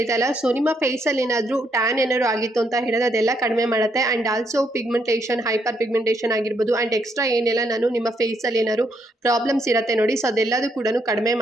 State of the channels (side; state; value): both; normal; correlation 0.75